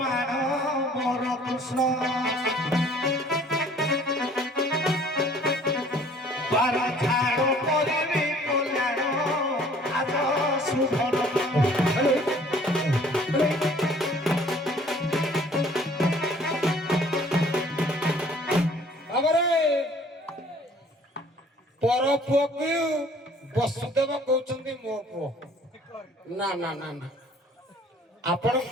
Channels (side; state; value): both; normal; correlation 0.54